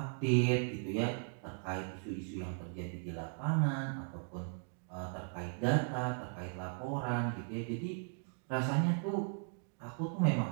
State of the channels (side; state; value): left; silent; 53 dB below the other